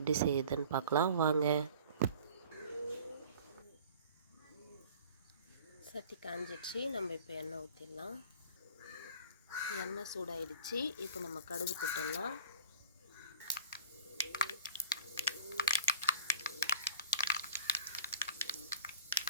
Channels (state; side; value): inverted; both; correlation -0.46